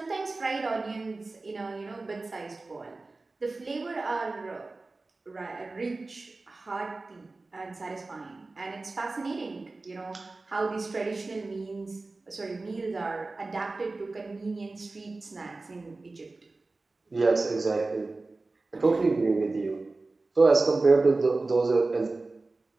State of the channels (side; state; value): left; quieter; 3.4 dB